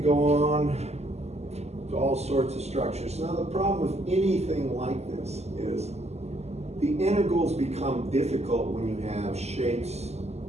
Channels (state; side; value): late; left; 0.31 ms